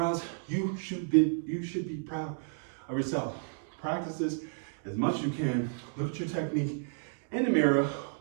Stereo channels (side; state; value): left; silent; digital silence